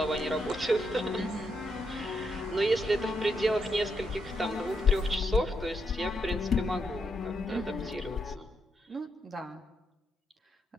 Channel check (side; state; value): both; normal; correlation 0.80